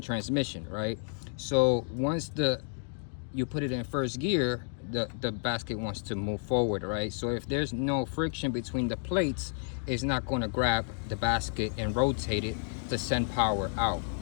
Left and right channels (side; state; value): right; silent; 57 dB below the other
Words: transmission, right? So once you put it in first gear, the basket wants to move forward, right? So if there's no friction between the plates, it's not going to grab the basket and rotate it to send power out